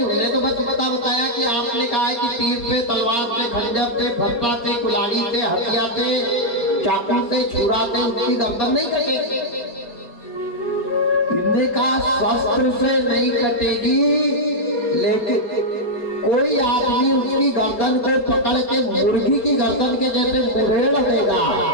उन्हें तो बस इतना बताया कि आपने कहा है कि तीर से, तलवार से, खंजर से, फट्टा से, कुल्हाड़ी से, हथियार से, चाकू से, छुरा से उसकी गर्दन नहीं कटेगी। इनने कहा शस्त्र से नहीं कटेगी, लेकिन कोई आदमी उसकी गर्दन को पकड़ के मुर्गी की गर्दन के जैसे मुरेड़ देगा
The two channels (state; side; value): late; right; 4.3 ms